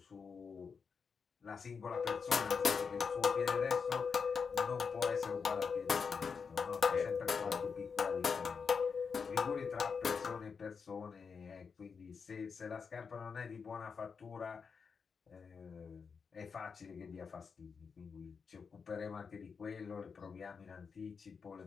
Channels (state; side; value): quieter; right; 5.7 dB